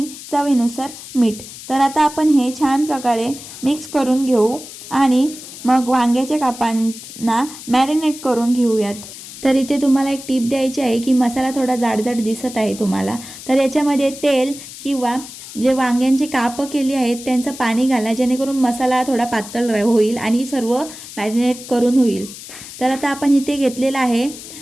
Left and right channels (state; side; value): noise; left; hiss, 14 dB below the sound